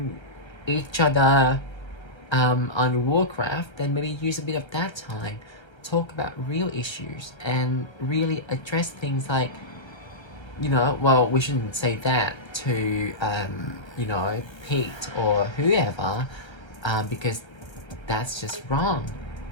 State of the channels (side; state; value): right; late; 1.3 ms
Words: each other on Warcraft, then maybe use a bit of that time, talk about real issues and really address things like, well, we shouldn't say that to, Pete or whoever, because that's just wrong.